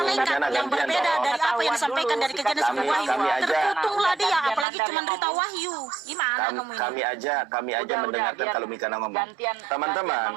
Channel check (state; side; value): drops out; left; at 4.7 s